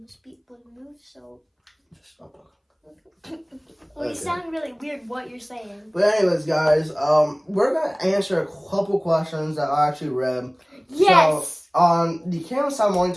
be able to move. So Just stop talking. well, you sound really weird. What you're saying? But anyways, guys, we're gonna answer a couple questions that I actually read. Yes. So on the Kansas Town Morning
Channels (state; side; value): identical; both; correlation 1.00